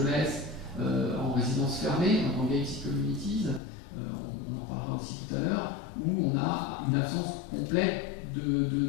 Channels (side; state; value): right; drops out; at 3.6 s